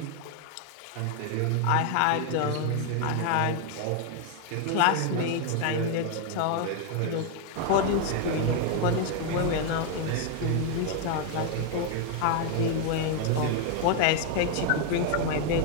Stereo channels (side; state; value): both; different; correlation 0.00